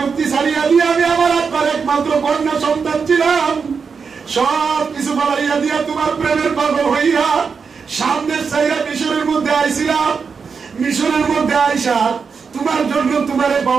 ছাড়িয়া দিয়ে আমি আমার আব্বার একমাত্র কন্যা সন্তান ছিলাম, সব কিছু বাড়াইয়া দিয়া তোমার প্রেমের পাগল হইয়া সামনের চাইরা মিশরের মধ্যে আইছিলাম। মিশরের মধ্যে আইসা তোমার জন্য, তোমারে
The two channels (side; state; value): left; quieter; 5.6 dB